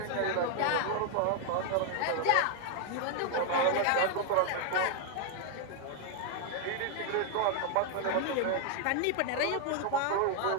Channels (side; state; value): both; different; correlation 0.00